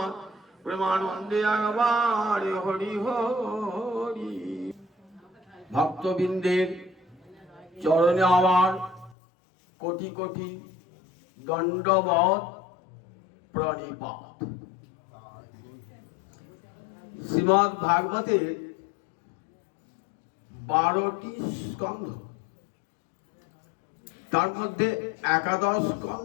প্রেমানন্দে একবারে হরি হরি। ভক্তবৃন্দের চরণে আমার কোটি কোটি দণ্ডবৎ প্রণিপাত। শ্রীমদ্ ভাগবতের 12টি স্কন্ধ, তার মধ্যে একাদশ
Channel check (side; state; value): right; drops out; at 9.2 s